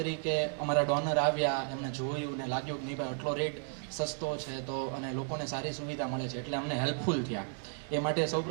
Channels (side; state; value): left; silent; 55 dB below the other